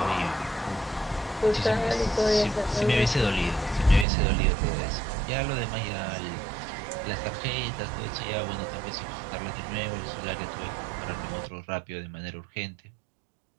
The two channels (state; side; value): drops out; left; at 4.0 s